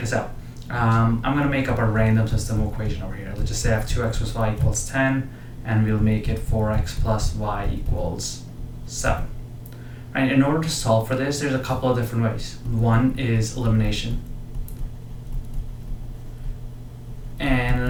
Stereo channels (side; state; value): both; identical; correlation 1.00